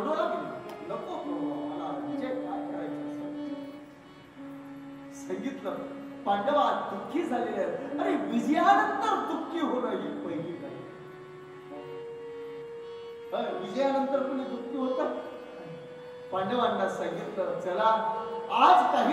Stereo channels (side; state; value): both; identical; correlation 1.00